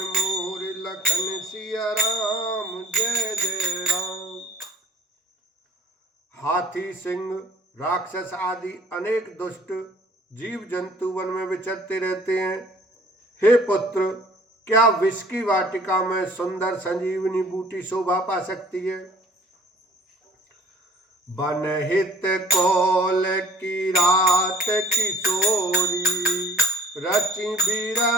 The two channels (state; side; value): normal; both; correlation 0.51